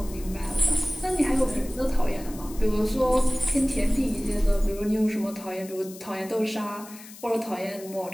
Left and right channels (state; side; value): noise; left; hiss, 17 dB below the sound